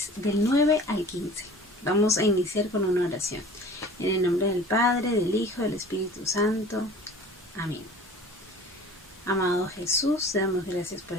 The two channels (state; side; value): normal; both; correlation 0.43